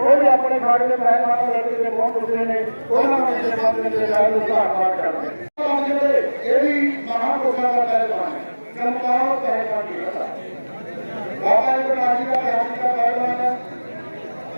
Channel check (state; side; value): inverted; both; correlation -1.00